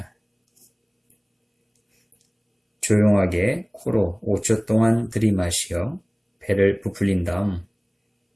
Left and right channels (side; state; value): both; identical; correlation 1.00